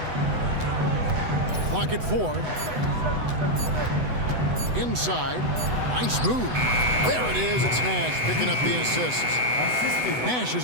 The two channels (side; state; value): left; late; 8.0 ms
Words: Clock at 4. Inside. Nice move. There it is. It's Nash picking up the assist. Nash